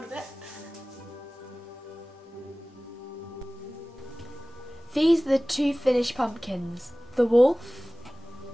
a bit? These are the two finished pumpkins, the wolf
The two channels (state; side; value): normal; both; correlation 0.98